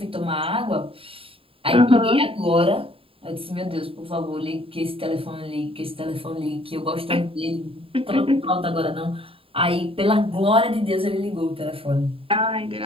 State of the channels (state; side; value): late; left; 0.27 ms